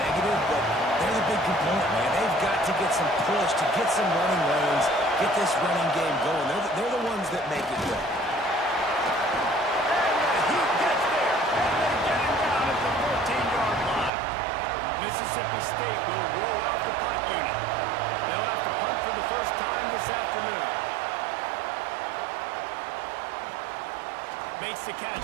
but they're the big component, man. They've got to get some push, to get some running lanes, get this running game going. They're the ones that make it go. Mississippi State will roll out the punt unit. They'll have to punt for the first time this afternoon. Makes the catch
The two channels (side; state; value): left; drops out; at 14.1 s